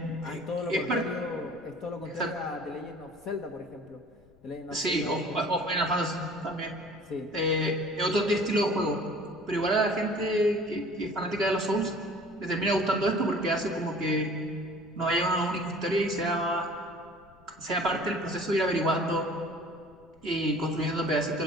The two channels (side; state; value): left; noise; rumble, 27 dB below the sound